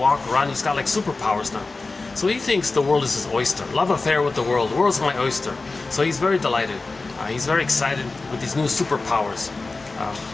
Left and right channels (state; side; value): quieter; right; 3.6 dB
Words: run. He's got like superpowers now. So he thinks the world is his oyster. Love affair with the world. The world's my oyster. So he's very delighted. He's very excited with these new superpowers